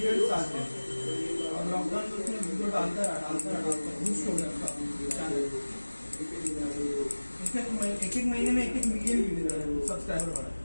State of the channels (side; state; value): both; inverted; correlation -1.00